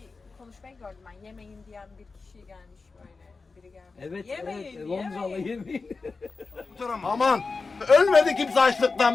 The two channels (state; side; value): quieter; right; 4.2 dB